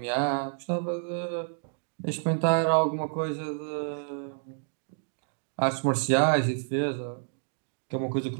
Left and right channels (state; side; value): silent; left; digital silence